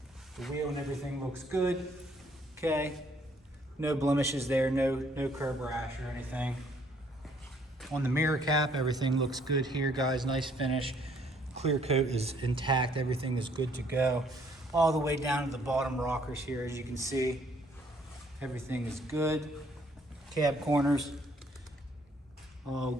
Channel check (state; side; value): normal; both; correlation 0.64